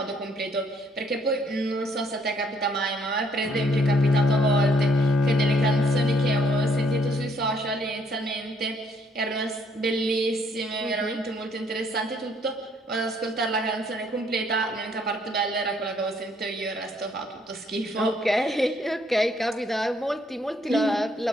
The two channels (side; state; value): both; normal; correlation 0.67